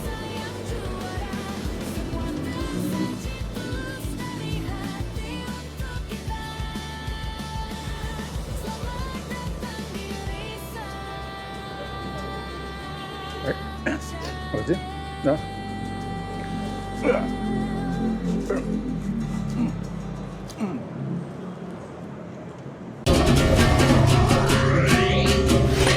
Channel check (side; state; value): both; identical; correlation 1.00